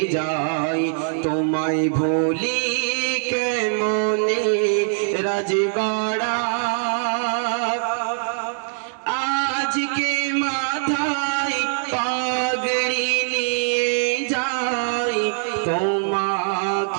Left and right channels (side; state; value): left; silent; digital silence